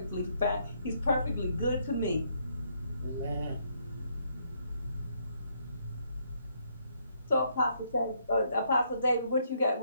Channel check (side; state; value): both; inverted; correlation -0.72